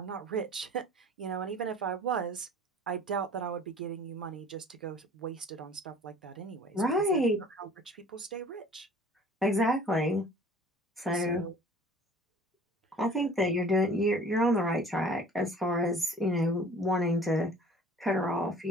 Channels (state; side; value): normal; both; correlation 0.48